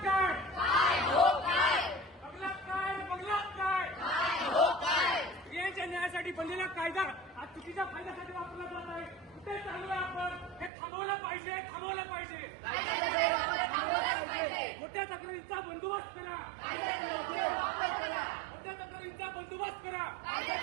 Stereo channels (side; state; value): left; drops out; at 10.7 s